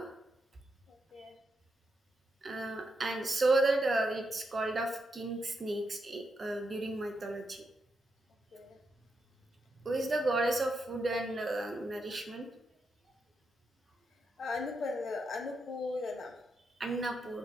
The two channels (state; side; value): normal; both; correlation 0.83